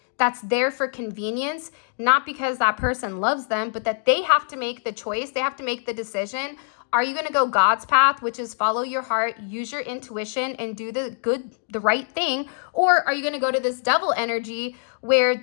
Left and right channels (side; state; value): right; silent; digital silence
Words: that's there for convenience, not because that person loves them, but that they have to make the choice. They have to make the decision. Are you going to go God's path, which is follow your heart, use your intuition, and do the right thing? Or are you going to go to this devil energy where